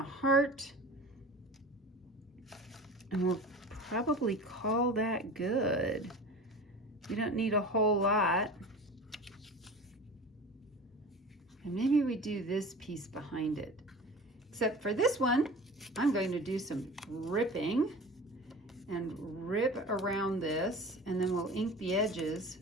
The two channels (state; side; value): normal; both; correlation 0.36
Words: heart. And we'll probably call that good. We don't need a whole lot. And maybe we do this piece behind it. Except for this one, I'm going to do some ripping and rip around this, and then we'll ink the edges